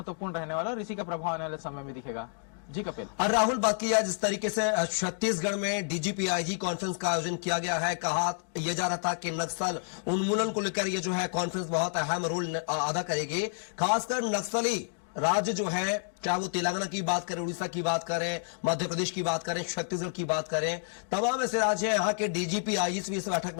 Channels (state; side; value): silent; right; digital silence